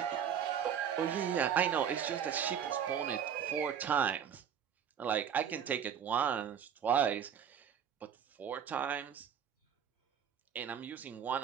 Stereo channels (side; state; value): left; quieter; 8.2 dB